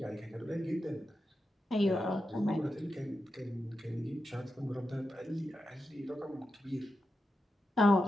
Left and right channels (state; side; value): normal; both; correlation 0.89